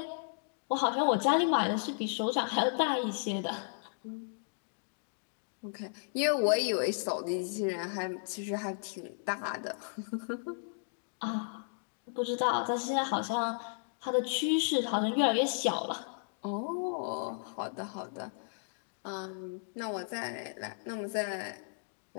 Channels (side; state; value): right; silent; digital silence